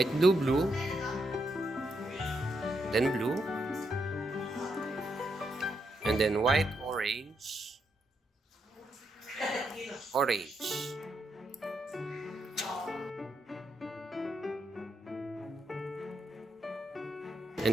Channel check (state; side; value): normal; both; correlation 0.80